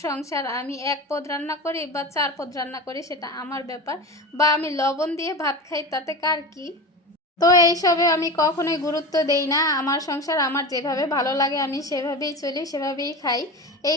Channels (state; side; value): normal; both; correlation 0.27